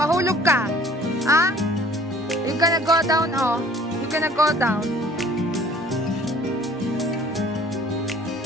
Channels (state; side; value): normal; both; correlation 0.52